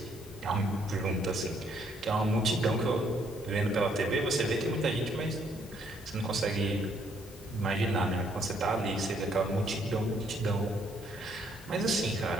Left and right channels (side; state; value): both; normal; correlation 0.68